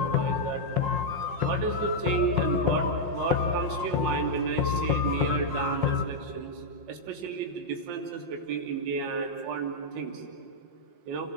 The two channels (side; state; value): left; late; 5.6 ms